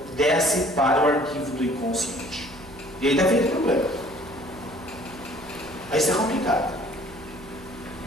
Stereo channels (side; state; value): right; noise; hum, 20 dB below the sound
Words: desce para o arquivo do inconsciente. E aí dá feito problema. Aí isso é complicado.